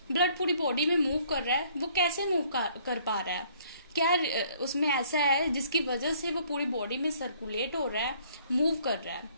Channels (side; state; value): both; inverted; correlation -0.61